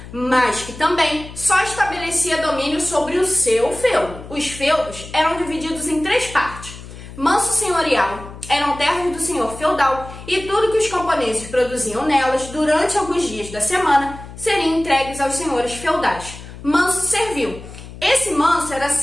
mas que também só estabelecia domínio sobre o seu feudo. Os feudos eram divididos em 3 partes. Manso senhorial eram terras do senhor feudal, e tudo que os camponeses produziam nelas durante alguns dias da semana seriam entregues aos senhores feudais. Manso servil. Esse manso era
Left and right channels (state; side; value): noise; left; hum, 15 dB below the sound